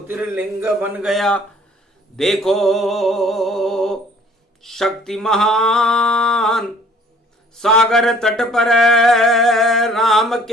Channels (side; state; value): both; normal; correlation 0.56